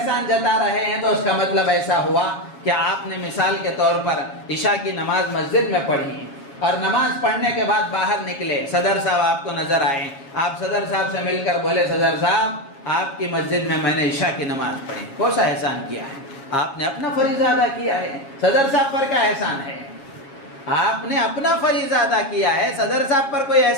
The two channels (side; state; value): right; late; 7.2 ms